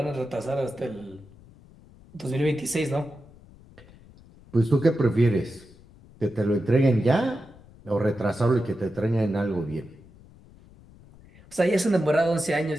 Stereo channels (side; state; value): left; noise; rumble, 24 dB below the sound